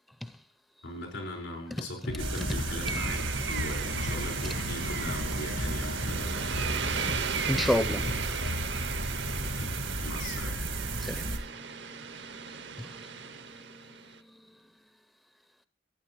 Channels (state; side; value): normal; both; correlation 0.52